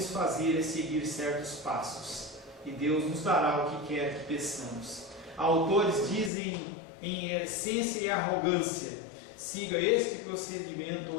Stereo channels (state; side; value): drops out; right; at 6.3 s